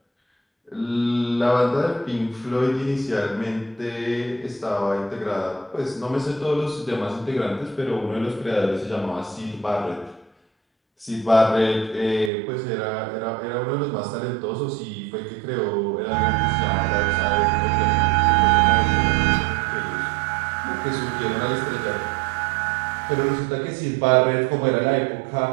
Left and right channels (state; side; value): drops out; left; at 12.3 s